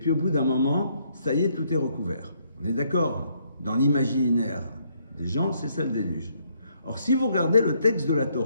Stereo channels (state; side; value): inverted; both; correlation -0.71